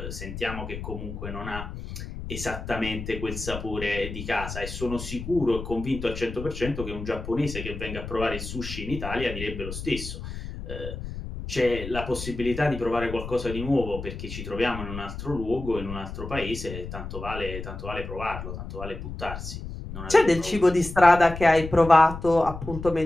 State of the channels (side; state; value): left; noise; rumble, 9 dB below the sound